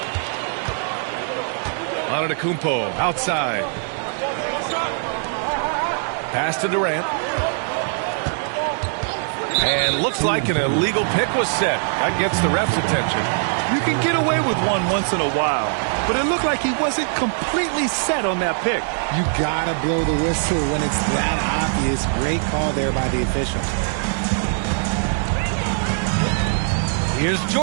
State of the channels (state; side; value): silent; left; 65 dB below the other